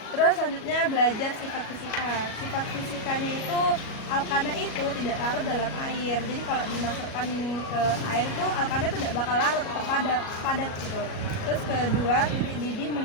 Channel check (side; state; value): right; late; 37 ms